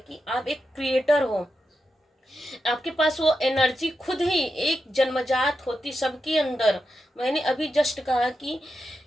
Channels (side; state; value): both; normal; correlation 0.88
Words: आप एक क्रिएटर हो, आपके पास वो एनर्जी खुद ही एक जन्मजात होती सबके अंदर। मैंने अभी जस्ट कहा कि